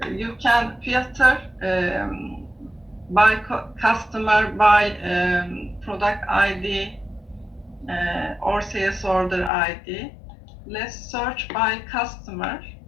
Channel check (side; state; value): right; drops out; at 9.5 s